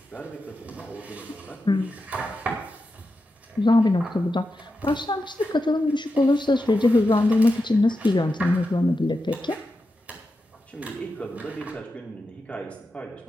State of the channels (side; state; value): both; normal; correlation 0.89